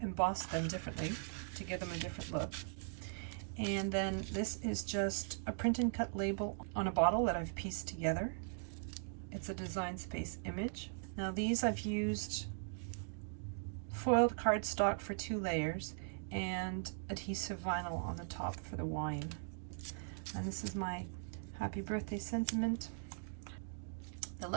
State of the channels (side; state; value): left; silent; digital silence